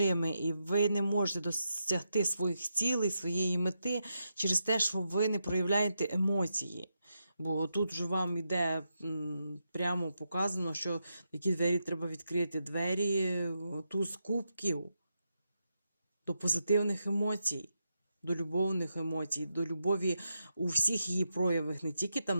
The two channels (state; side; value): inverted; both; correlation -0.85